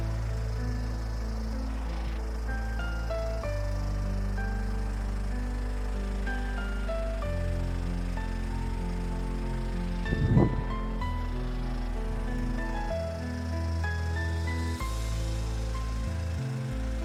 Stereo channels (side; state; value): both; identical; correlation 1.00